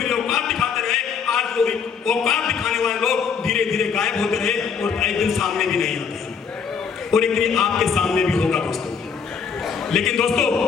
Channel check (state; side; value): quieter; right; 6.4 dB